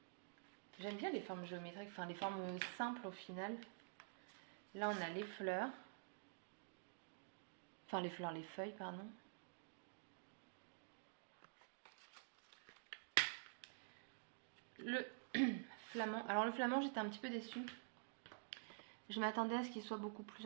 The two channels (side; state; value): left; silent; digital silence